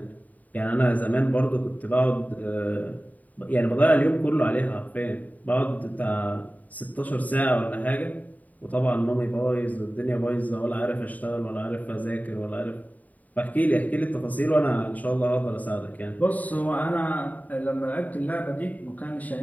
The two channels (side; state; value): right; late; 0.075 ms